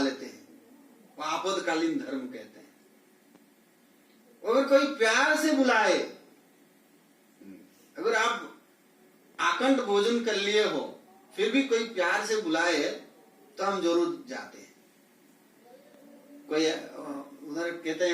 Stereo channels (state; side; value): identical; both; correlation 1.00